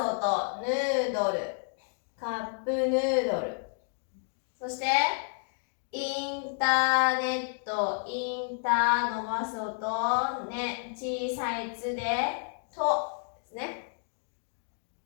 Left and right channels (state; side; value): silent; right; 57 dB below the other